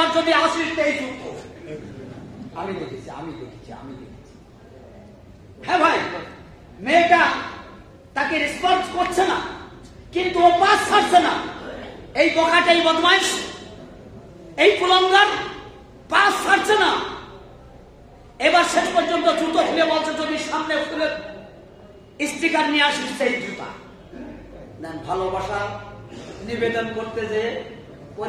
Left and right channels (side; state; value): both; identical; correlation 1.00